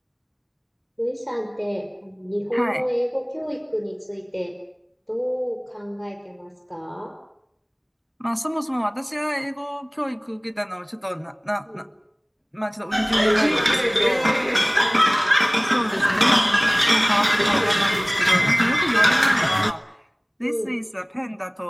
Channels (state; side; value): identical; both; correlation 1.00